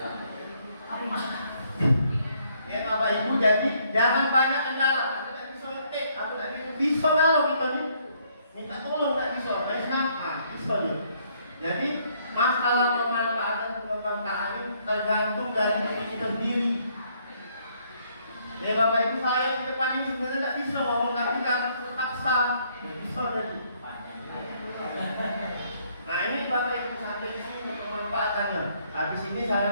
Ya, Bapak Ibu, jadi jangan banyak kendala. Aku nggak bisa ngetik, aku nggak bisa kalau kita nih minta tolong nggak bisa. Bisa ya. Jadi masalah pemanfaatan pengembangan ini tergantung dari diri kita sendiri. Ya Bapak Ibu, saya di depan ini sebenarnya tidak bisa ngomong, tapi kan terpaksa bisa jadi. Nah ini Bapak Ibu sampai di sini pemanfaatannya. Habis ini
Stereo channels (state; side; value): inverted; both; correlation -0.68